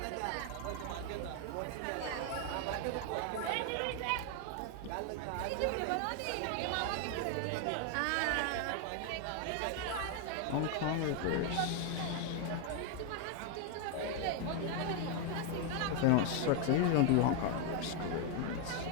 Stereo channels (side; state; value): both; different; correlation 0.01